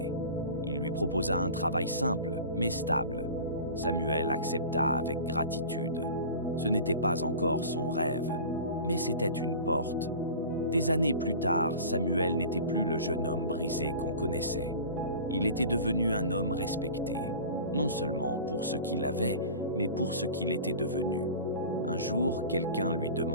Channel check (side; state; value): both; inverted; correlation -0.37